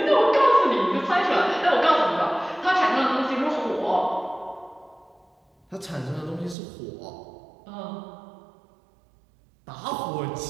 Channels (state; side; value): drops out; left; at 6.6 s